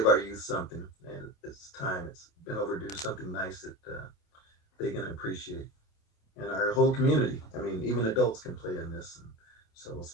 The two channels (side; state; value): right; late; 27 ms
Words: our youth something, and it's time. It's been overdue. Something nice that they can appreciate, and our whole community. I mean, even adults can play in this. And so,